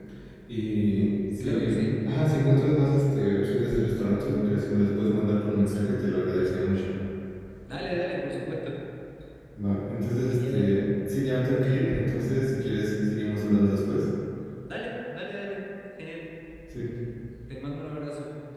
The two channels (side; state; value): both; identical; correlation 1.00